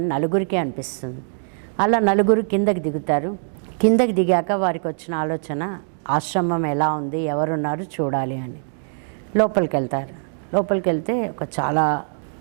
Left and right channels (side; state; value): left; silent; digital silence